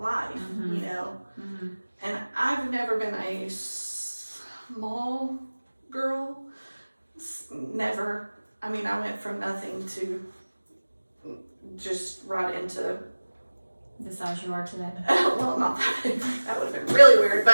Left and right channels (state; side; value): inverted; both; correlation -1.00